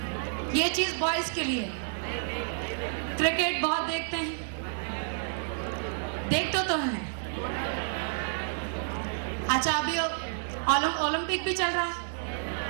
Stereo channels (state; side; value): silent; left; digital silence